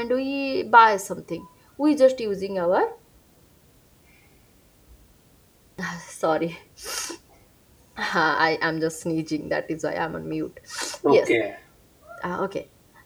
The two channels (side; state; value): both; identical; correlation 1.00